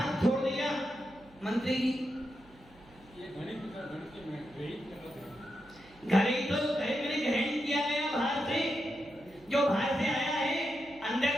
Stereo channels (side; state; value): right; noise; hum, 26 dB below the sound